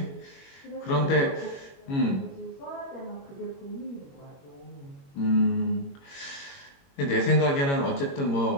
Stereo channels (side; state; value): right; late; 22 ms